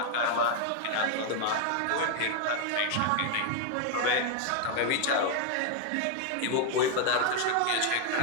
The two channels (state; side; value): different; both; correlation 0.01